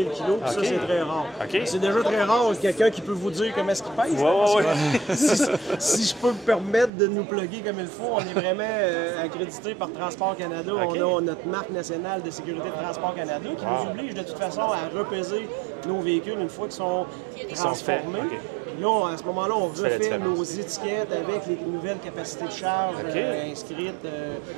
kg, puis ça, c'est très rare. C'est déjà très rare quelqu'un qui peut vous dire comment est-ce qu'il pèse. Si je peux me permettre de nous plugger comme il faut, on est vraiment accrédité par Transport Canada. On a notre marque nationale de sécurité de Transport Canada qui nous oblige de toute façon à repeser nos véhicules une fois qu'ils sont transformés. Là, à ce moment-là, on refait nos étiquettes avec les nouvelles capacités de charge inscrites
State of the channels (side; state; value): left; drops out; at 6.9 s